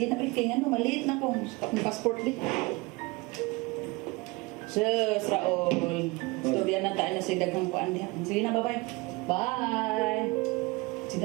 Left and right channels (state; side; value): quieter; left; 24.4 dB